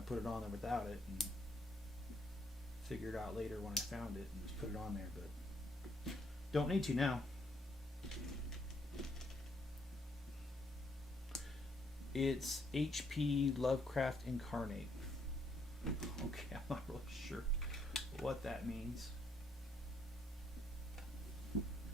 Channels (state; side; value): normal; both; correlation 0.71